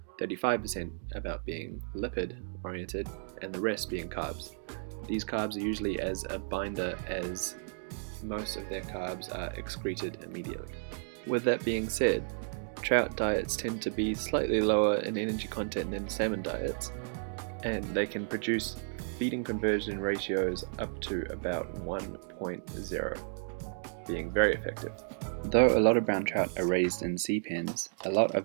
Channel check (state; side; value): silent; left; digital silence